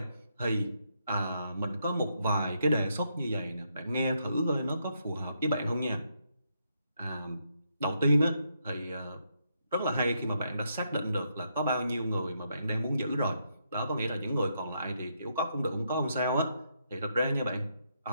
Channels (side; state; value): both; inverted; correlation -0.78